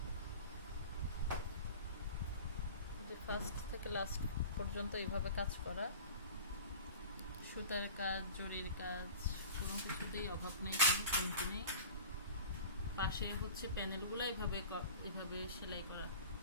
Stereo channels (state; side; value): inverted; both; correlation -0.38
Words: ফার্স্ট থেকে লাস্ট পর্যন্ত এইভাবে কাজ করা, সুতার কাজ, জরির কাজ, কোনো কিছুতেই অভাব নেই, কোনো কমতি নেই। পাশে হচ্ছে প্যানেলগুলো এভাবে সেলাই করা,